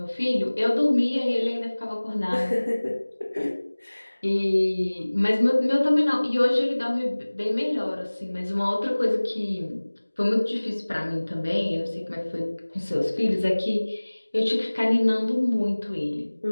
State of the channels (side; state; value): both; inverted; correlation -1.00